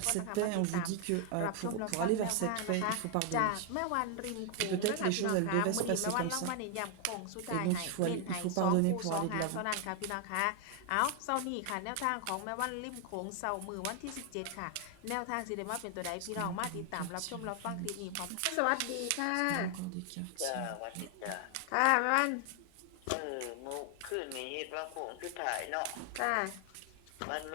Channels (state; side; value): different; both; correlation 0.00